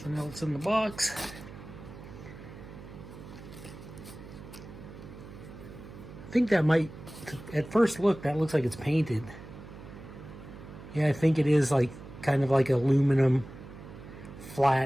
else in the box. I think that might, at first look, that looks like it's painted. Yeah, I think it is like kind of like aluminum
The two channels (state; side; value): noise; right; hum, 15 dB below the sound